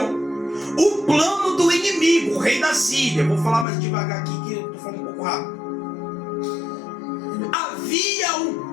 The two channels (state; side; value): drops out; right; at 3.7 s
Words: o plano do inimigo, o rei da Síria. Vou falar mais devagar aqui que eu estou falando um pouco rápido. Havia um